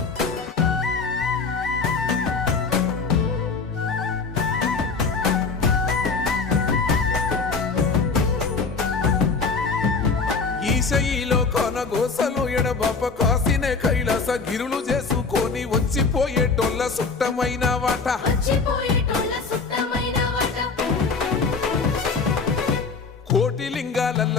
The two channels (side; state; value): right; quieter; 4.7 dB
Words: ఈశయిలో కొనగోసలు ఎడబాప కాసినే కైలాస గిరులు చేసుకొని వచ్చిపోయేటోళ్ళ సుట్టమైన వాట వచ్చిపోయేటోళ్ళ సుట్టమైన వాట కోటి లింగాలల్ల